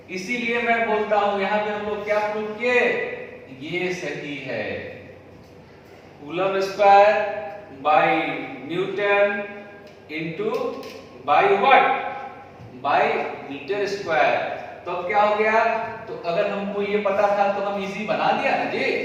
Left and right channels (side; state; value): both; identical; correlation 1.00